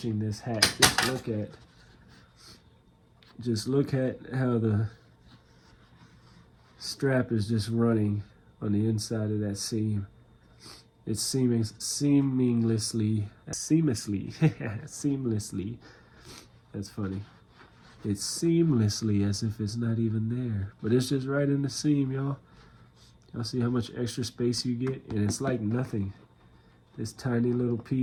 this hat. Just look at how the strap is just running on the inside of that seam. It's seamlessly, that's funny. It's seamlessly as if it's not even there, but it's just right in the seam, y'all. Y'all see how much extra space you get? And it's like nothing. This tiny little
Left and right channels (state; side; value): identical; both; correlation 1.00